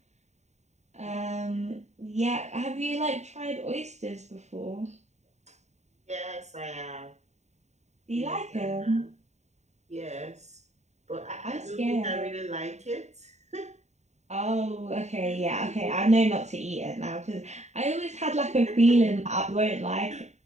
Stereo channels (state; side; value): late; left; 0.33 ms